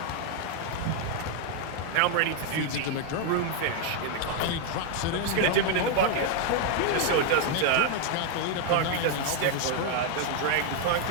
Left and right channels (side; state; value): both; different; correlation 0.00